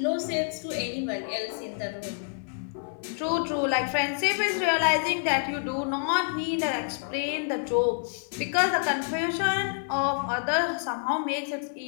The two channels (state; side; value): silent; right; 58 dB below the other